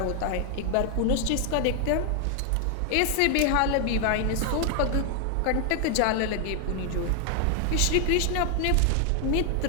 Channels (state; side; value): different; both; correlation 0.00